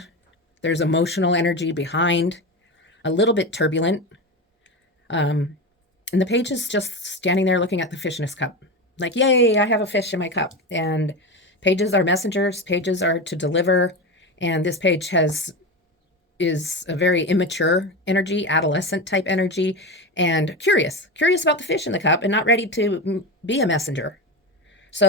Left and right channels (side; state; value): both; normal; correlation 0.21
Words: There's emotional energy behind, a little bit turbulent. And the page is just standing there looking at the fish in his cup. Like, yay, I have a fish in my cup. And pages are messengers. Pages are to deliver. And this page is a very immature energy, adolescent type energy, and curious about the fish in the cup and not ready to be a messenger.